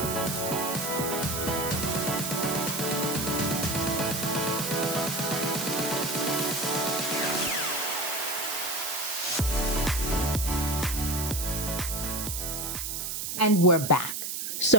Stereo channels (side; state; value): right; noise; hiss, 3 dB below the sound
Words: And we're back.